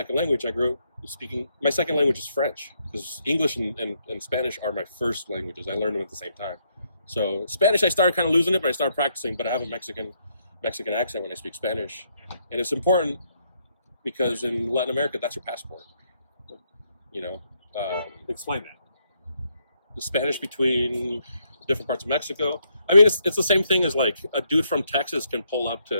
language. I grew up speaking. My second language is French because English and Spanish are my first languages. I learned them at the same time. So Spanish, I started kind of losing it, but I started practicing. But I have a Mexican accent when I speak Spanish, and it's important because in Latin America, that's your passport. You know, explain that. The Spanish between different parts of Mexico. I mean, it's the same thing as like a dude from Texas can pull up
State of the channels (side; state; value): both; inverted; correlation -0.75